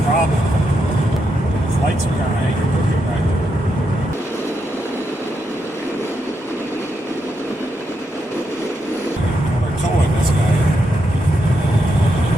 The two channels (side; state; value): both; normal; correlation 0.82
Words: problem. His lights are kind of hanging crooked right there. Well, they're towing this guy.